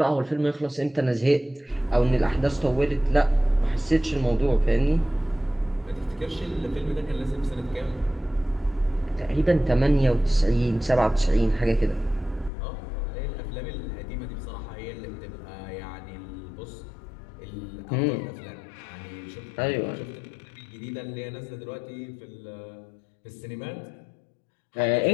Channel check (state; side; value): drops out; right; at 12.5 s